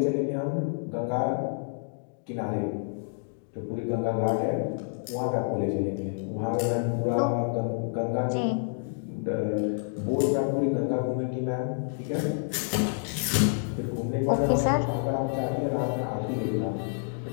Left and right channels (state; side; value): silent; right; digital silence